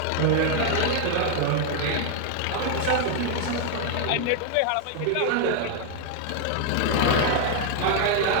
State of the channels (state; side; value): different; both; correlation 0.00